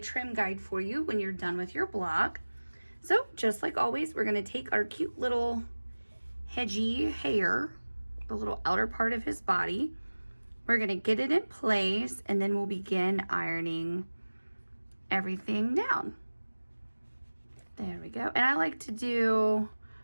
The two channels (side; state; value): both; inverted; correlation -1.00